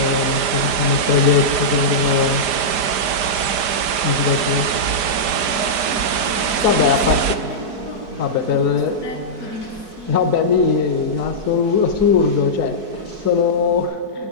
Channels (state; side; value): late; left; 5.0 ms